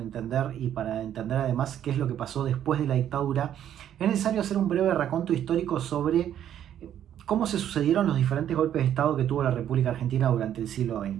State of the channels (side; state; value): left; quieter; 10.4 dB